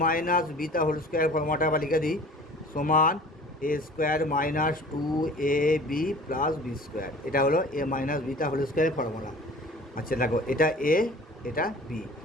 মাইনাস বিটা হোল স্কোয়ার ফর্মুলাটা আবার লিখে দিই, সমান A square minus 2ab plus B square. এটা হলো এ মাইনাস বিটা হোল স্কোয়ারের ফর্মুলা। আচ্ছা দেখো এটা এ এটা বি,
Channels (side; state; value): both; normal; correlation 0.44